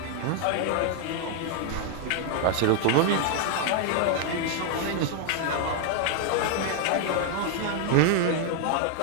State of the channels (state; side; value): different; both; correlation 0.00